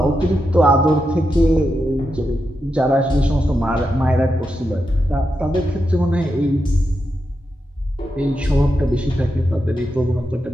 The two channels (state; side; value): normal; both; correlation 0.86